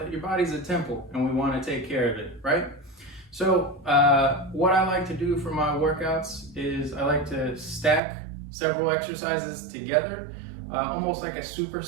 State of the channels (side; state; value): left; drops out; at 8.0 s